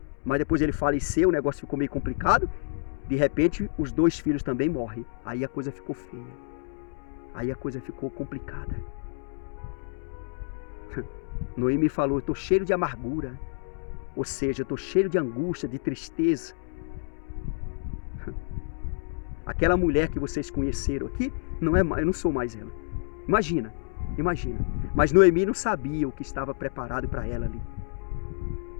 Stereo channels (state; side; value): silent; right; digital silence